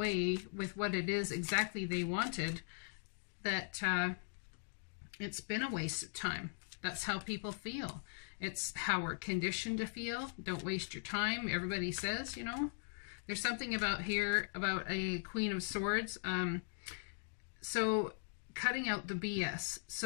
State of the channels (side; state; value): right; silent; digital silence